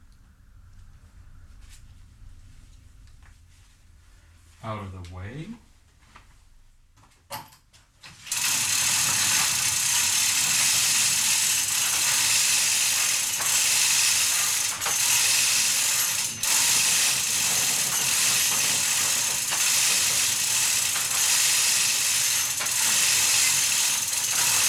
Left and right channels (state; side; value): identical; both; correlation 1.00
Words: Out of the way.